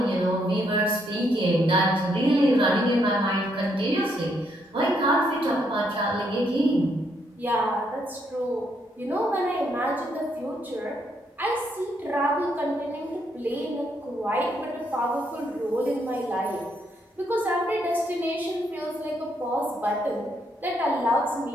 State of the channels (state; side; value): normal; both; correlation 0.74